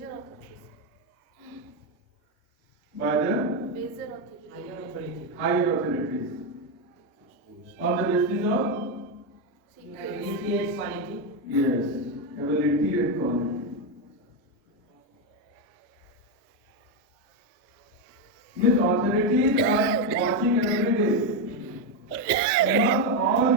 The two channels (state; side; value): normal; both; correlation 0.07